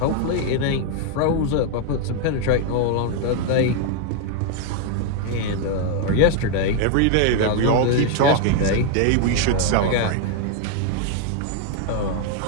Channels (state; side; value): different; both; correlation 0.00